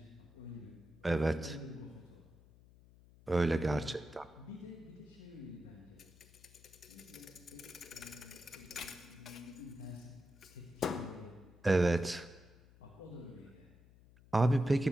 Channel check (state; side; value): noise; left; hum, 24 dB below the sound